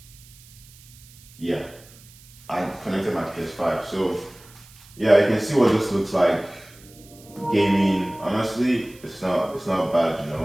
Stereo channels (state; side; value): noise; right; hiss, 23 dB below the sound